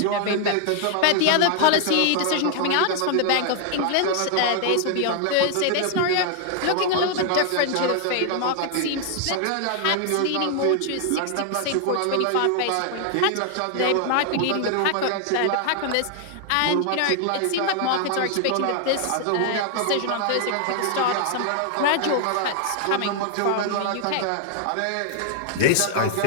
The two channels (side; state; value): both; different; correlation 0.00